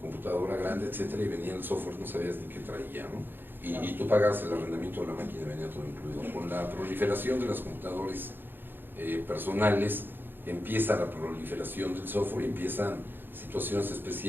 computadora grande, etcétera, y venía el software, no sabías ni qué traía, ¿no? Y tú pagabas el arrendamiento de la máquina, venía todo incluido. Con la proliferación de las computadoras personales, empieza la proliferación del software, empiezan situaciones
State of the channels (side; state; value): left; late; 0.097 ms